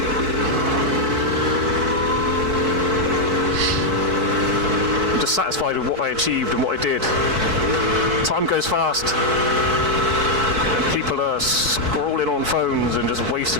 I'm just satisfied with what I achieved and what I did. Time goes fast. People are scrolling on phones and just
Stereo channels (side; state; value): left; late; 4.6 ms